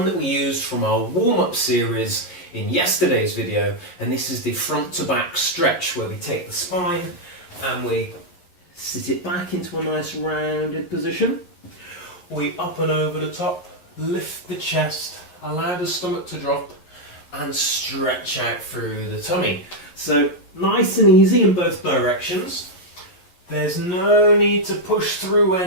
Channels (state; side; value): late; right; 11 ms